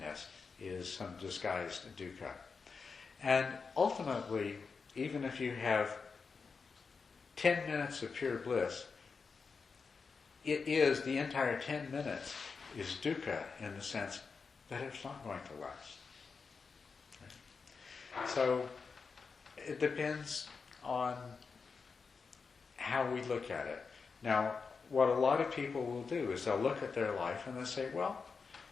is some disguised dukkha. And ultimately, even if you have 10 minutes of pure bliss, the entire 10 minutes is dukkha in the sense that it's not going to last. Right? So it depends on how we look at it. Now, what a lot of people will do is they'll look at their life and they'll say, well,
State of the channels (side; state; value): right; quieter; 5.0 dB